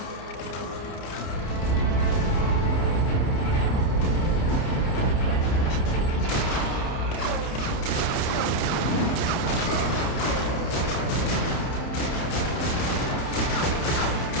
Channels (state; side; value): late; right; 30 ms